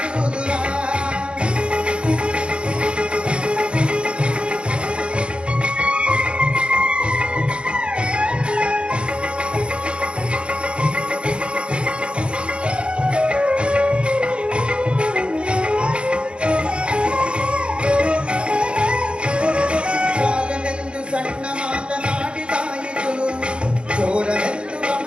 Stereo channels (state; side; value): late; left; 0.056 ms